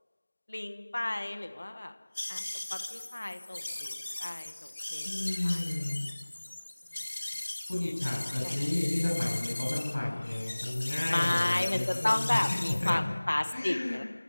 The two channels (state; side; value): inverted; both; correlation -1.00